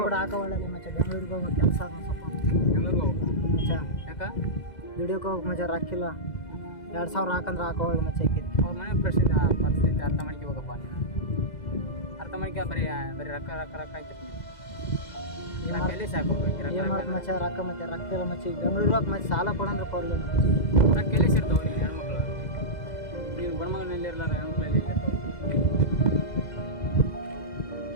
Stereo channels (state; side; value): late; right; 2.0 ms